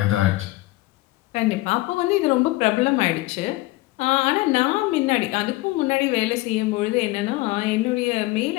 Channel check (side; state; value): right; quieter; 19.6 dB